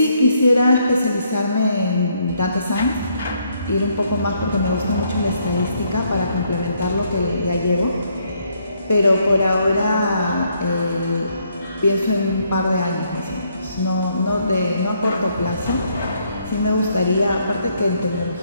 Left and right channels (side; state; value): both; inverted; correlation -0.72